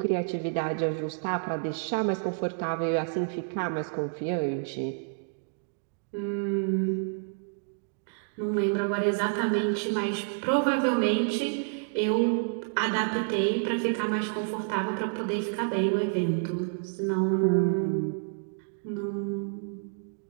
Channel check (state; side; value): silent; left; digital silence